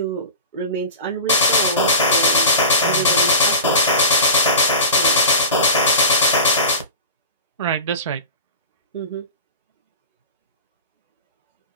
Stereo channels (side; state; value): both; inverted; correlation -0.31